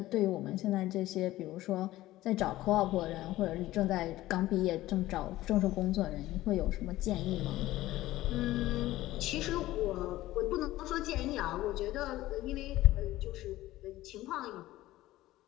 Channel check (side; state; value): right; quieter; 16.2 dB